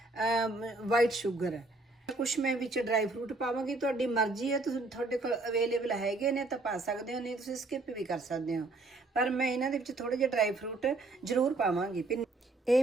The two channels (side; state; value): left; quieter; 3.2 dB